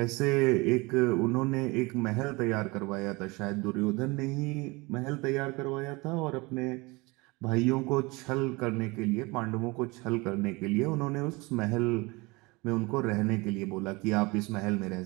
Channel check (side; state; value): left; quieter; 24.8 dB